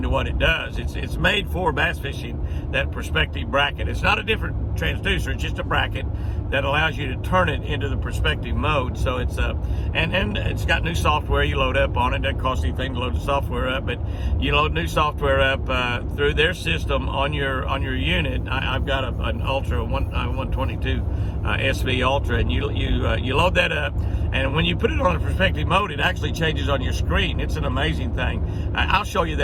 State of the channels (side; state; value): both; identical; correlation 1.00